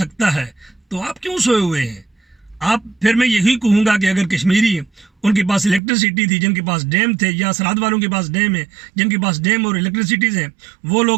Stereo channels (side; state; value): left; drops out; at 5.8 s